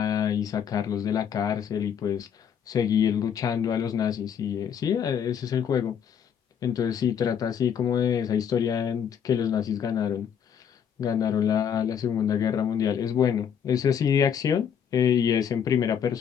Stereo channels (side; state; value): right; quieter; 8.1 dB